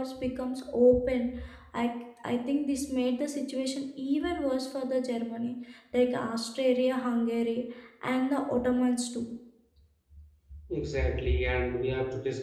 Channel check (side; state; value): both; identical; correlation 1.00